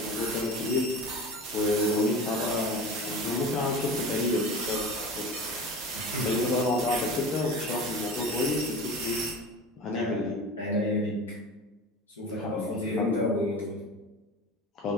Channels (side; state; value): both; normal; correlation 0.34